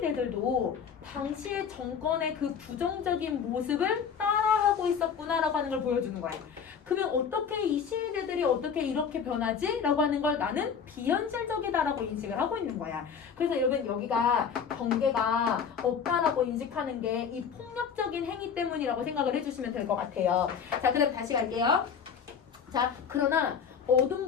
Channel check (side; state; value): right; quieter; 6.9 dB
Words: 당시의 정권의 그 부정적인 모습을 따라하고 있었구나라고 하는 걸 보여주는 거야. 그러면 어떻게 이 시위대들이 어떻게 이렇게 변하지? 라고 하는 걸 나는 비현실적이다라고 인식을 하고 있는 거야. 그래서 여러분 여기가 경계가 없다라고 인식하는 게 이 폭력적인 행위 때문이라고 생각을 해주시면 될 것 같아요. 자, 그 다음 다시 갈게요. 자, 그러나